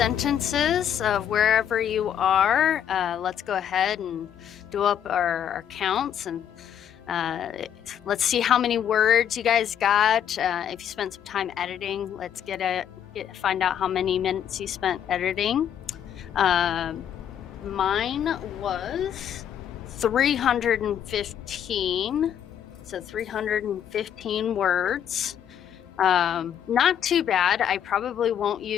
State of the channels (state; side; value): quieter; right; 9.4 dB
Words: of wherever you are. Let's go ahead and do up our counts, and let's see how many words you guys got. If you spent some time editing, let's find out how many minutes you spent editing. Mine was 315, so 315 words. Not too bad. I probably won't